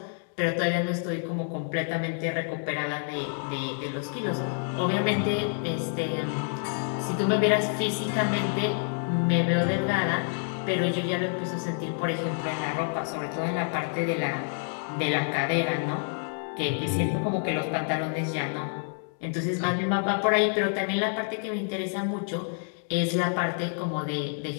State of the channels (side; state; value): right; silent; 57 dB below the other